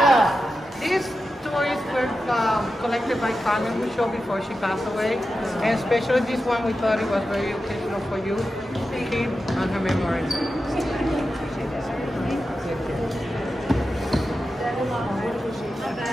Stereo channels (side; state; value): both; normal; correlation 0.91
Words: These toys were collected by Carmen Michaud before she passed away, and especially this one we thought it was very occasional for you to keep on her memory.